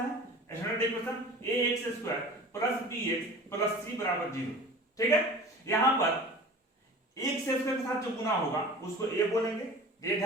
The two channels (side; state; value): both; normal; correlation 0.40